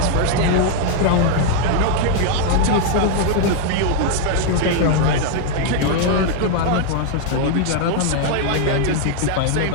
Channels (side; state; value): both; different; correlation -0.01